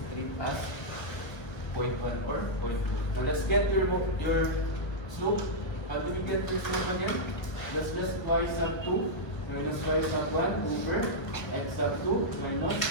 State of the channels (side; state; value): right; late; 1.3 ms